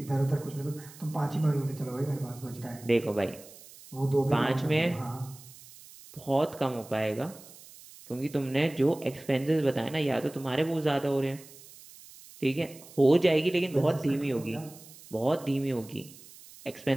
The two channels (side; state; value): right; noise; hiss, 20 dB below the sound